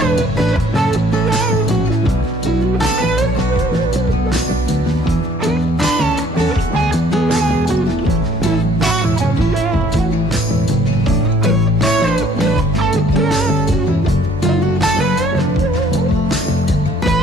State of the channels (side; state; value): both; normal; correlation 0.60